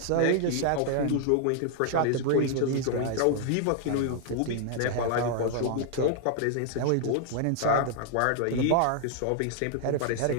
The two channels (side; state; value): both; different; correlation 0.00